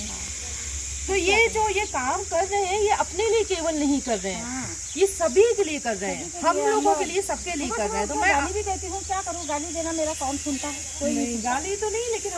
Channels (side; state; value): both; identical; correlation 1.00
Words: तो ये जो ये काम कर रहे हैं, ये अपने लिए केवल नहीं कर रहे हैं, हाँ। ये सभी के लिए कर रहे हैं, हम लोगों के लिए, सबके लिए कर रहे हैं। तो मैं गाली भी देती हूँ, क्या करूँ, गाली देना मेरा कौन सुनता है? कोई नहीं, गाली तो नहीं, लेकिन